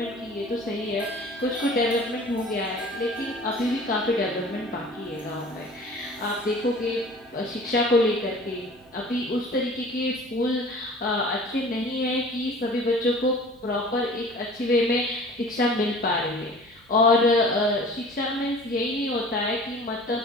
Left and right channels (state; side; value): noise; right; hum, 29 dB below the sound